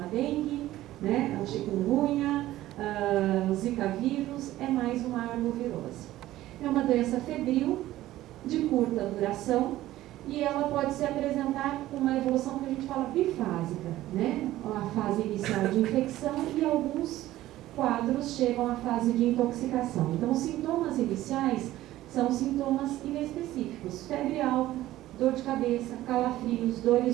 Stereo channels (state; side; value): quieter; left; 15.2 dB